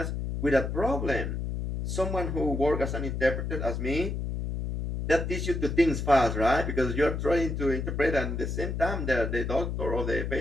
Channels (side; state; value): left; noise; hum, 3 dB below the sound